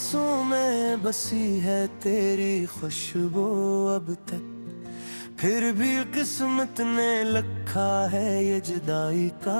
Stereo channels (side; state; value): both; inverted; correlation -1.00